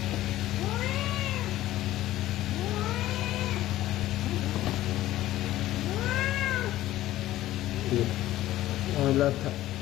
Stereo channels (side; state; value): right; quieter; 14.8 dB